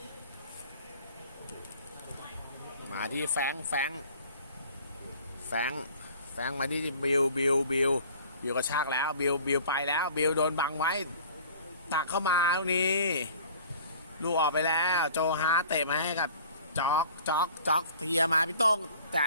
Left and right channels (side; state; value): both; inverted; correlation -0.48